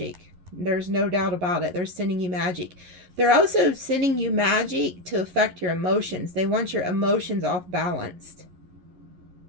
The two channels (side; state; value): left; late; 11 ms